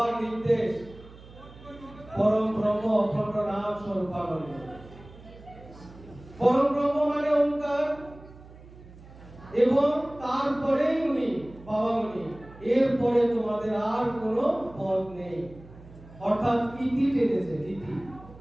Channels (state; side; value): noise; right; hum, 20 dB below the sound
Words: নির্দেশ পরম ব্রহ্ম অখণ্ড নাম স্বরূপানন্দ। পরম ব্রহ্ম মানে ওঙ্কার, এবং তারপরেই উনি বাবামণি, এরপরে তোমাদের আর কোনো পথ নেই, অর্থাৎ ইতি টেনেছে, ইতি।